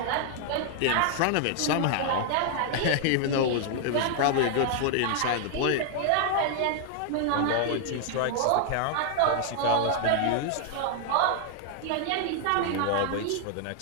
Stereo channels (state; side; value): different; both; correlation 0.00